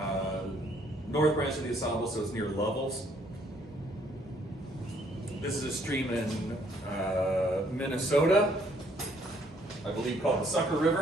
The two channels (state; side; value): normal; both; correlation 0.65